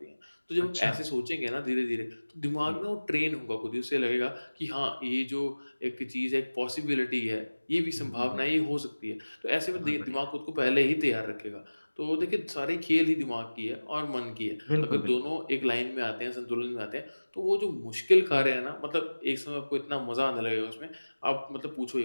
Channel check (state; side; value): inverted; both; correlation -1.00